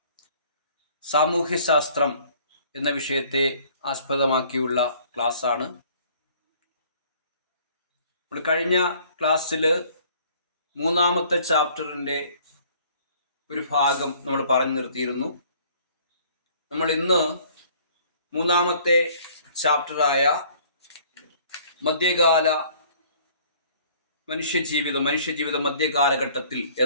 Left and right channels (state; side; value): inverted; both; correlation -0.56